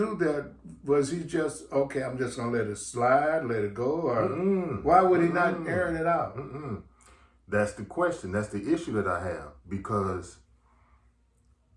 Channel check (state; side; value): identical; both; correlation 1.00